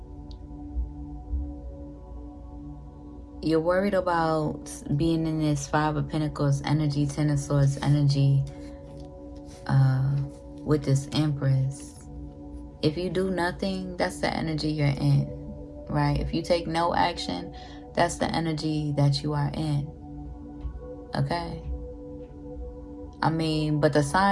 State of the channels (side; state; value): both; identical; correlation 1.00